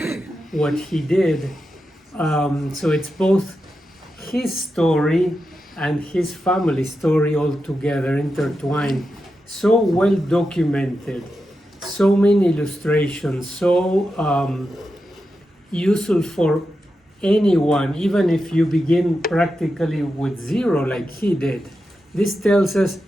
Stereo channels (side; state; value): both; normal; correlation 0.89